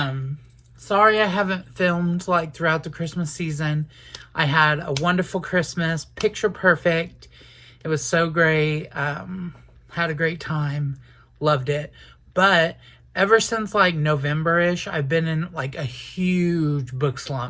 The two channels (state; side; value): identical; both; correlation 1.00